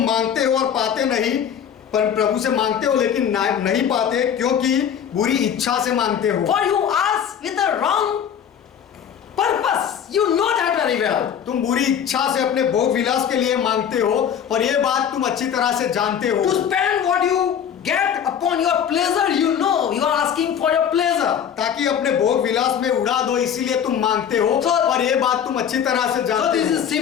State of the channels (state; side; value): quieter; right; 8.5 dB